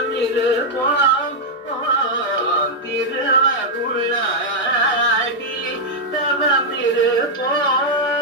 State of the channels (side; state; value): both; normal; correlation -0.03